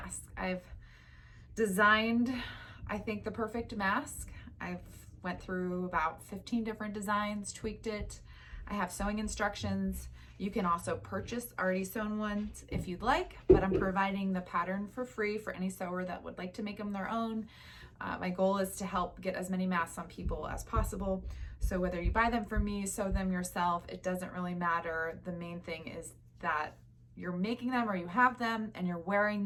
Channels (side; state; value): both; identical; correlation 1.00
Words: I've designed, I think, the perfect mask. I've went through about 15 different designs, tweaked it. I have sewing instructions. You can also purchase already sewn ones if you'd like, but I'm providing the pattern for free for any sewer that would like to make them their own. My goal is to help get as many masks on people as possible. So whether you buy them from me, sew them yourself, it doesn't really matter. The main thing is that you're making them or you have them and you're wearing